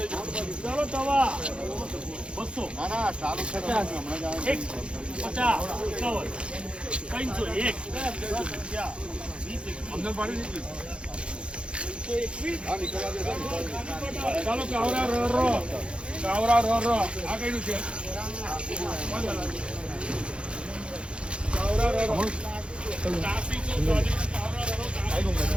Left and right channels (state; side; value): late; left; 0.057 ms